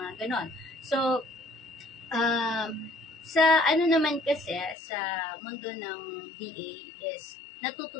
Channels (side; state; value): right; drops out; at 4.8 s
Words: ganon. So, Sa ano naman kasi, sa mundo ng VA is